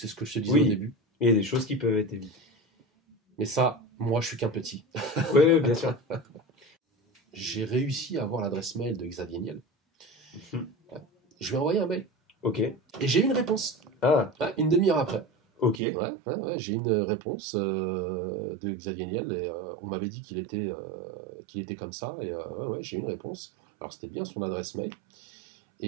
ce que je te disais au début. Il y a des choses qui peuvent être évitées. Mais ça, moi, je suis qu'un petit. Oui, bien sûr. J'ai réussi à avoir l'adresse mail de Xavier Niel. Je lui ai envoyé un mail. Ok. Et j'ai eu une réponse. Une demi-heure après. Ok. J'ai une réponse de Xavier Niel et on m'avait dit qu'il était comme ça et j'ai eu une réponse. Alors c'était bien son adresse mail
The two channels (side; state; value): left; drops out; at 15.8 s